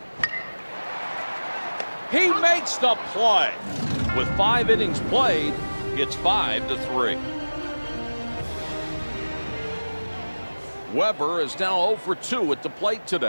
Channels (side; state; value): both; inverted; correlation -1.00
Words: He makes the play. With 5 innings played, it's 5-3. Weber is now 0 for 2 at the plate